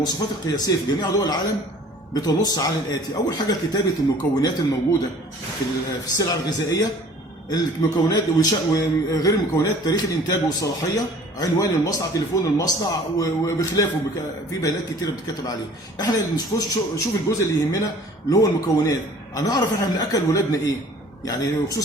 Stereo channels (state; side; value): normal; both; correlation 0.50